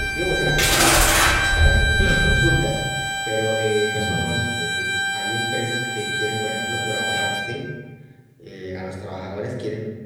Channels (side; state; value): both; identical; correlation 1.00